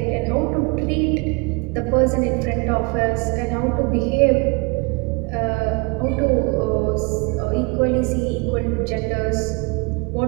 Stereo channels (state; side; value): quieter; left; 29.6 dB